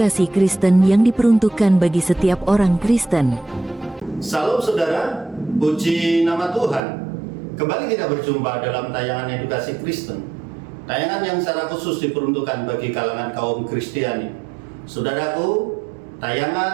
Kristen yang diperuntukkan bagi setiap orang Kristen. Salam saudara, puji nama Tuhan. Kembali kita berjumpa dalam tayangan edukasi Kristen, tayangan yang secara khusus diperuntukkan bagi kalangan kaum Kristiani. Saudaraku,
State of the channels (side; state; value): left; drops out; at 6.8 s